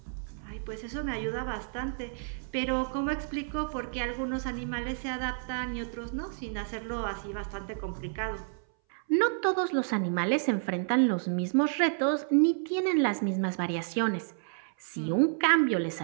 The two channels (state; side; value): silent; left; 58 dB below the other